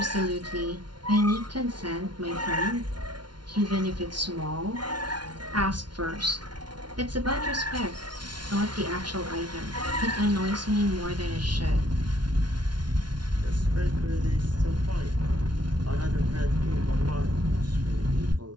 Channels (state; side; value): late; left; 0.70 ms